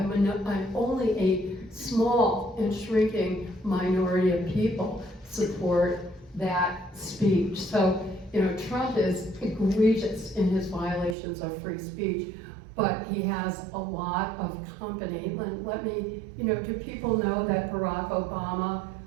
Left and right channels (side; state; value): left; drops out; at 11.2 s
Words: only a small and shrinking minority of people support that speech. So, Trump is egregious in his violations of free speech, but he has a lot of company. Let me, do people know that Barack Obama,